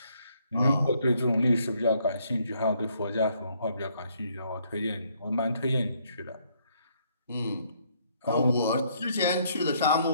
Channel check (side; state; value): both; inverted; correlation -0.69